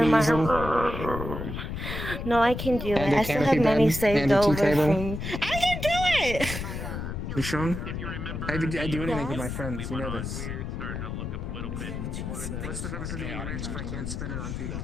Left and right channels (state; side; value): noise; left; rumble, 5 dB below the sound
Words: in my easel? room. No, I can do it. And a I still have canopy money bed saved and a tea over table? from. I can do it. You sure? I do anything with my friends. You know this. What's the purpose of being rich if I can't spend it on people?